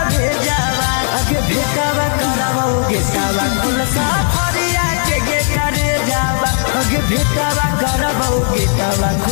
भेजावा आगे भेटावा करबौ गेटावा खुलसा फरिया के करे जावा आगे भेटावा करबौ गेटावा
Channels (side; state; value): right; silent; 57 dB below the other